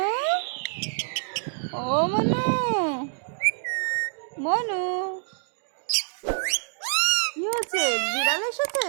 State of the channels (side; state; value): left; silent; digital silence